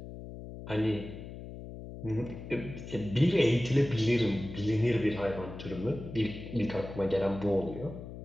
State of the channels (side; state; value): left; noise; hum, 11 dB below the sound